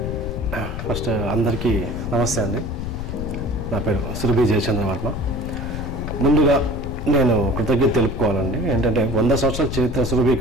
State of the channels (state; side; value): noise; left; rumble, 5 dB below the sound